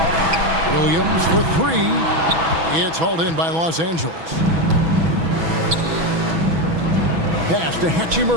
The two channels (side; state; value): left; late; 6.1 ms